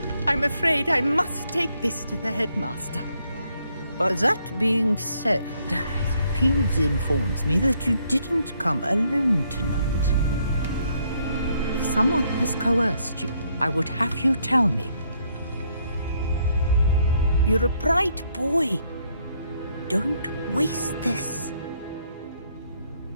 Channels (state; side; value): inverted; both; correlation -0.72